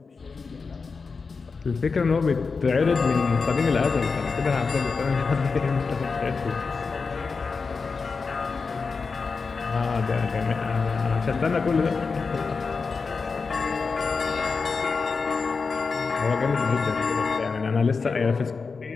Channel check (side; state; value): right; quieter; 4.7 dB